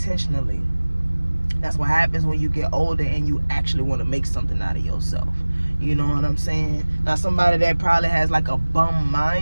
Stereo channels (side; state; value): both; inverted; correlation -1.00